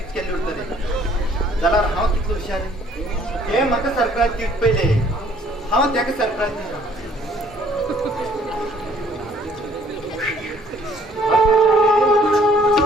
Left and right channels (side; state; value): both; normal; correlation 0.60